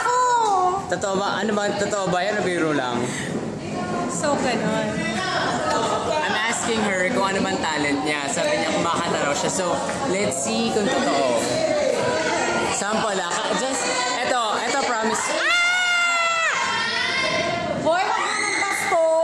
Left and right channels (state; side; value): identical; both; correlation 1.00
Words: Totoo ba? Ano ba? Totoo ba yan o biro lang? So, ganun. I'm asking her kung ano man talent niya. Sabi niya kumakanta raw siya. So, let's see kung totoo. Sample lang. Just, eto promise. Hoy, wag mo ng